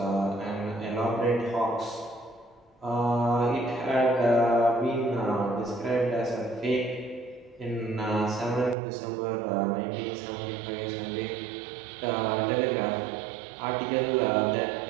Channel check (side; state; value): left; drops out; at 8.8 s